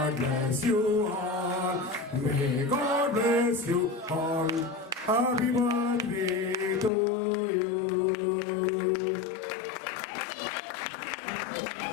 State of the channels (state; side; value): drops out; right; at 6.9 s